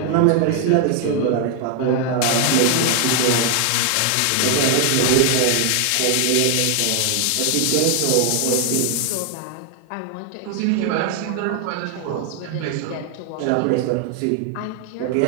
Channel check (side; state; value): both; different; correlation 0.00